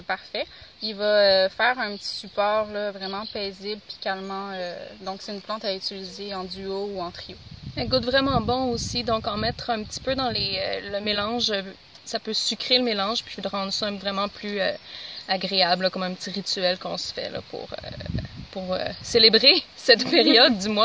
parfait. Il va faire un petit support là, vraiment paisible puis calmant. Donc c'est une plante à utiliser en duo ou en trio. Elle goûte vraiment bon aussi, donc en mettre un petit peu dans le mélange, ça peut sucrer le mélange puis de rendre ça vraiment plus agréable, là, comme un petit rituel qu'on se fait là, pour célébrer cette période du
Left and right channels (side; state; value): both; identical; correlation 1.00